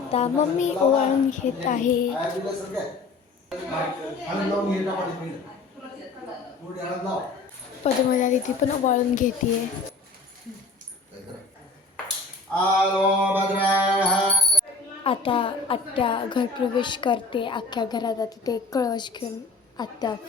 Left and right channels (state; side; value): quieter; right; 3.8 dB